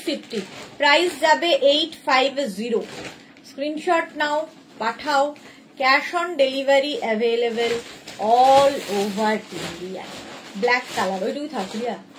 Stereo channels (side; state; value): both; identical; correlation 1.00